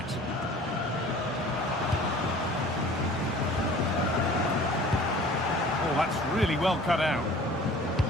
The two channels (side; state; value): both; normal; correlation 0.47